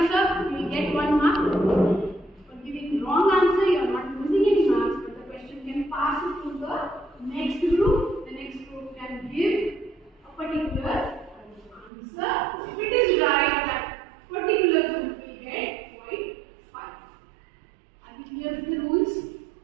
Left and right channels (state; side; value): drops out; left; at 11.9 s